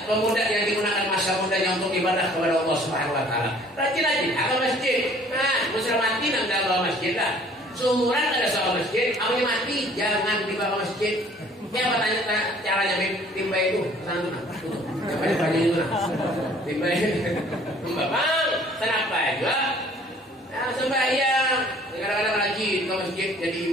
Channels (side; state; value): both; normal; correlation 0.55